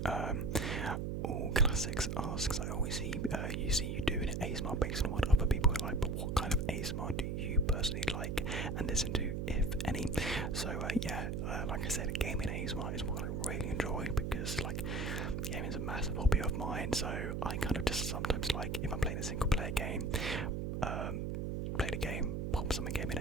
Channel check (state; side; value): noise; right; hum, 1 dB below the sound